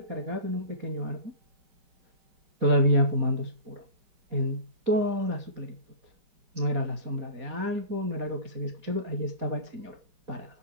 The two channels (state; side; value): late; left; 4.2 ms